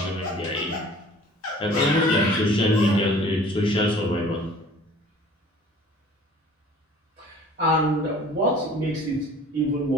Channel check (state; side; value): normal; both; correlation 0.48